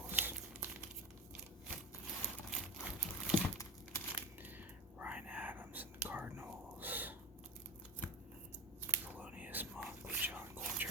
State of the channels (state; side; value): normal; both; correlation 0.27